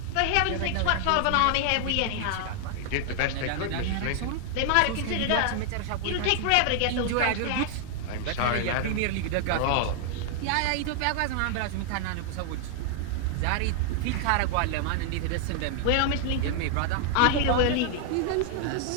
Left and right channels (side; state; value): both; different; correlation 0.00